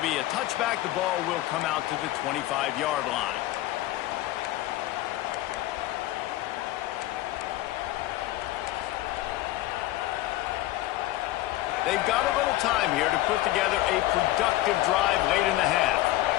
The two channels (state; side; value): quieter; right; 16.0 dB